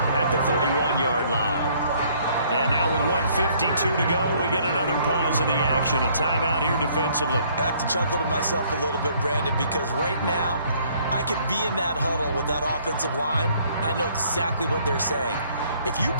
at the 31-yard line. And now with 1:52 to go, we get another pause in the action. A timeout here defensively. I have to chuckle to myself a little bit, Brandon, because right now I could be in that huddle with that offensive line. I know exactly what they're saying. If you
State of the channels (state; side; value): inverted; both; correlation -0.62